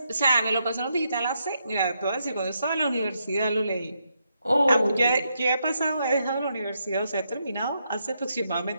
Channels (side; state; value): both; inverted; correlation -0.80